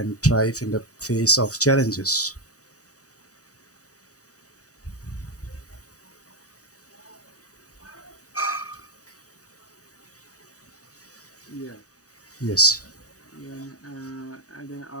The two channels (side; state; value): right; late; 0.66 ms